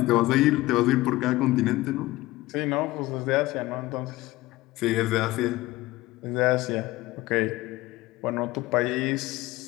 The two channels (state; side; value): quieter; right; 18.5 dB